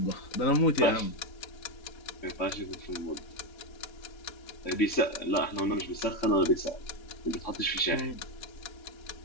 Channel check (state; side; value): late; right; 3.6 ms